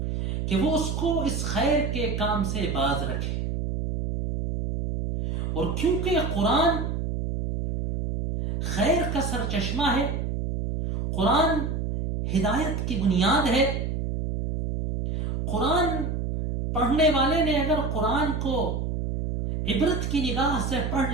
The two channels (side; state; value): right; noise; hum, 2 dB below the sound